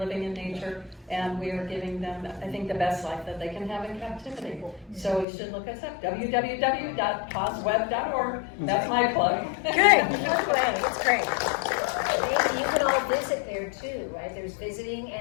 in nature, and we are giving them, I think, the best life that they can have in captivity. So you should look us up, www.pawsweb.org. That's my plug. Good. It's great. You can all visit there too, right? There's visiting,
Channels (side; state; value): right; drops out; at 5.2 s